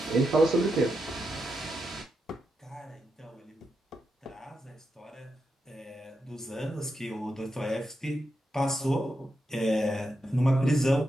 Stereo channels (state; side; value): normal; both; correlation 0.86